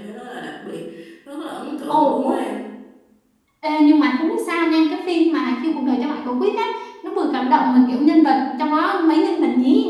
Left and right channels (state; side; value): identical; both; correlation 1.00